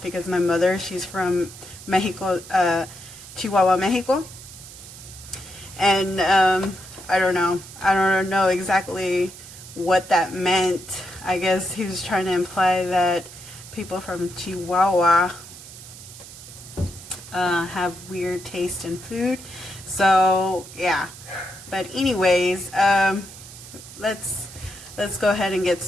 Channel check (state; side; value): noise; right; hiss, 16 dB below the sound